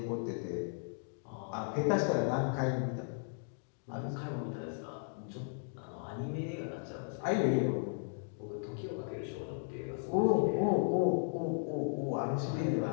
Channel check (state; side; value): silent; right; digital silence